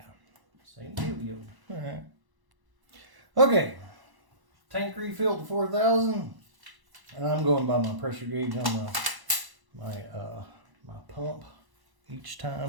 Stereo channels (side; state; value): left; late; 1.0 ms